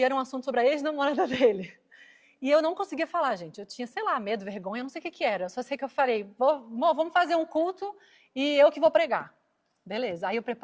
era um assunto sobre a ex-namorada dele. E eu não conseguia falar, gente, eu tinha, sei lá, medo, vergonha, não sei o que era. Eu só sei que eu falei, vamos fazer um culto e eu que vou pregar. Beleza, aí eu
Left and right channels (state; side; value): identical; both; correlation 1.00